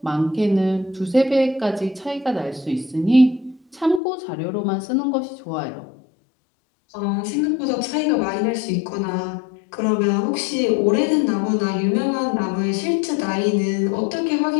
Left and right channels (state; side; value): drops out; right; at 4.0 s